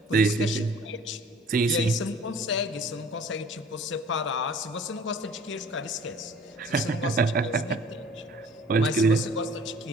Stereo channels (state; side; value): normal; both; correlation 0.50